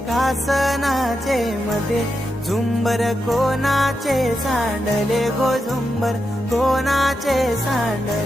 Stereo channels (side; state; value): both; normal; correlation 0.87